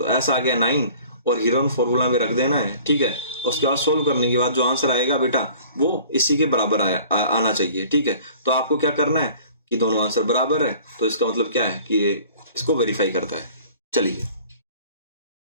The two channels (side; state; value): both; inverted; correlation -0.49